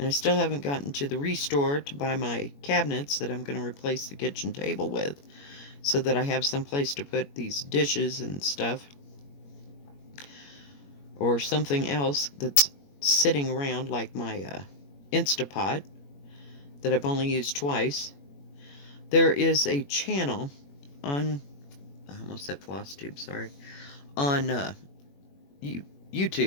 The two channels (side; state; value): right; late; 21 ms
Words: I still haven't gotten to the Restore to buy my cabinets that I'm going to replace the kitchen table with, so that I have some place to put these dishes and stuff. Or something else that's sitting around, like my Instapot that I've only used twice. There is a channel on, I almost said floss tube, sorry, on